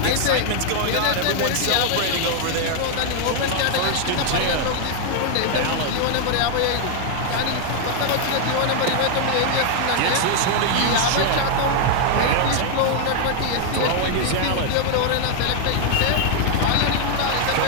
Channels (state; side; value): different; both; correlation 0.00